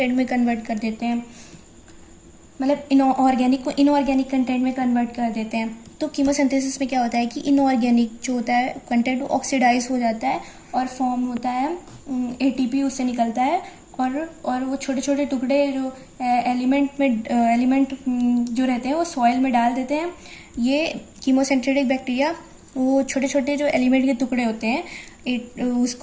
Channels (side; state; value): both; identical; correlation 1.00